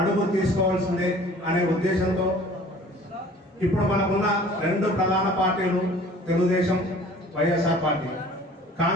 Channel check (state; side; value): normal; both; correlation 0.49